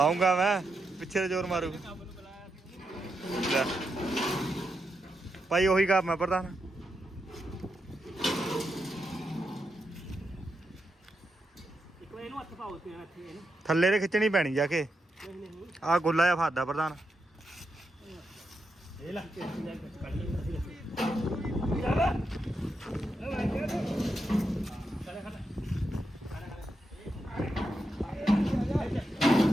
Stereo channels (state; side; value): normal; both; correlation 0.85